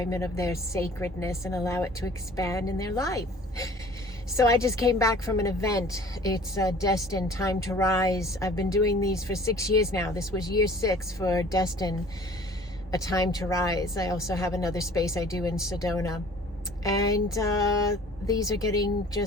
of their sacredness and allow it to expand in their life. So I just came back from an event. It's Destined Time to Rise. I've been doing these for 6 years now. This was year 6 for Destined A Time to Rise. I also have another space I do in Sedona. And these are getting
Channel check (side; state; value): both; normal; correlation 0.49